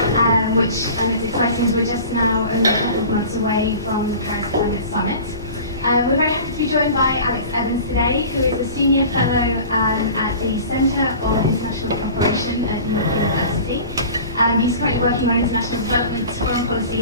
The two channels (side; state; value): both; inverted; correlation -0.40